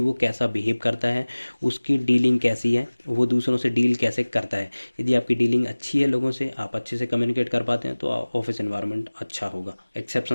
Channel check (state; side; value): inverted; both; correlation -1.00